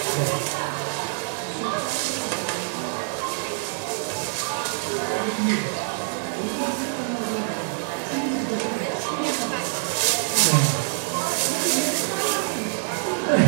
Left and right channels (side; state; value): left; silent; 62 dB below the other